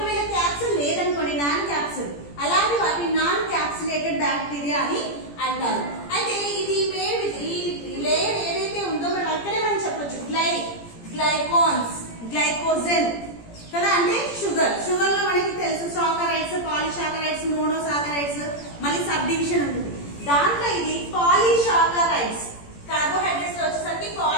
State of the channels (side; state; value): right; late; 17 ms